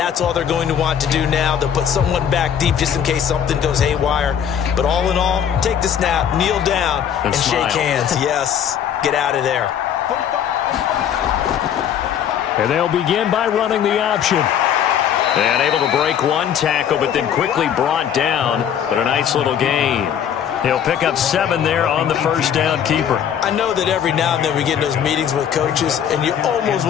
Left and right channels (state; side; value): quieter; right; 8.9 dB